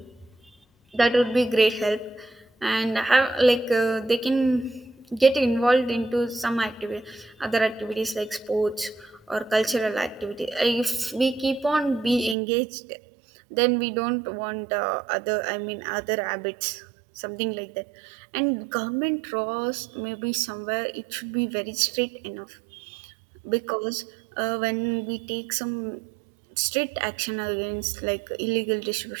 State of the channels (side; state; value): left; drops out; at 12.4 s